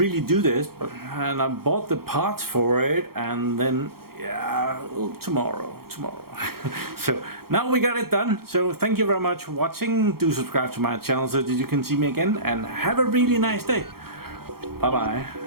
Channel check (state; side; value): late; left; 0.94 ms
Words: do this, and I bought the parts for it, and then yeah, tomorrow. So now we got it done. So thank you very much for watching. Do subscribe to my channel so that you can see me again, and have a really nice day. Bye bye.